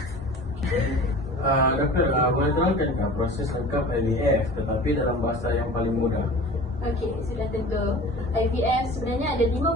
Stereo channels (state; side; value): normal; both; correlation 0.39